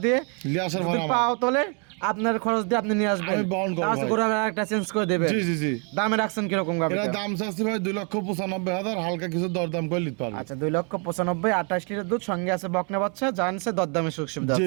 দিয়ে, লিয়ে আসার যদি ভাড়া আমার। পাও তোলে আপনার খরচ দিয়ে আপনি নিয়ে আসবেন। আমি বহন করবো ভাই। গরু একটা চেঞ্জ করে দেবে। জি জি জি, দামে রাখছেন কিরকম গাবি? এরা দাম চাচ্ছি ভাই 2,95,000, হালকা কিছু দরদাম করে নিতে পারবে। আচ্ছা, 2,95,000, 28 লিটার দুধ, সঙ্গে আছে বকনা বাচ্চা, জানছে দরদামে সুযোগ সুবিধা জি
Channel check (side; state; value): left; quieter; 37.3 dB